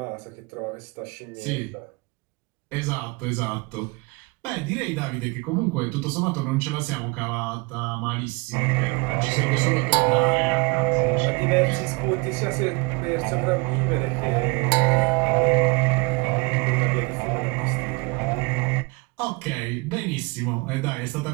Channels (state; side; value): quieter; left; 28.1 dB